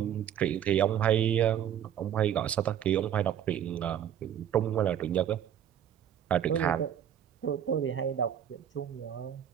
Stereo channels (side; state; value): left; quieter; 9.8 dB